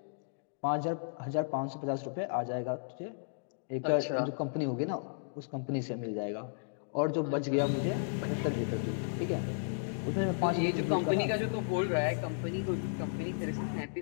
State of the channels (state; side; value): silent; right; digital silence